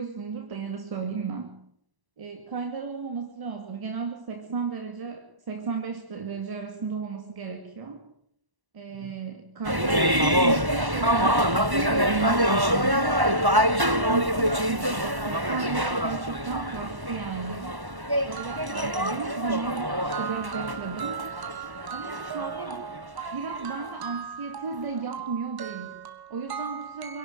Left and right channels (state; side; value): late; left; 1.1 ms